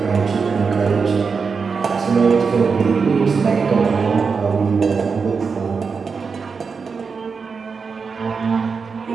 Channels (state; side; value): quieter; left; 5.3 dB